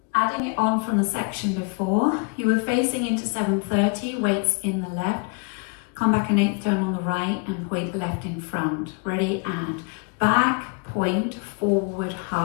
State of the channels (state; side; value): quieter; right; 34.0 dB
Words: Adding it on from the section before, you were facing into 7:30, weights in the left. Come back an 8th turn on the right and point the left in front. Ready, and back, point, forward,